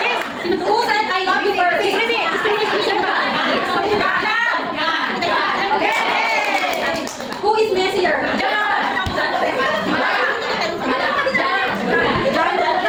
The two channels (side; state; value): both; identical; correlation 1.00